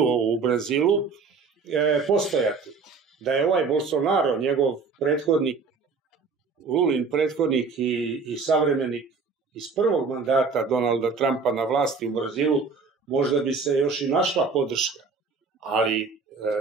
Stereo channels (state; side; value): quieter; left; 4.7 dB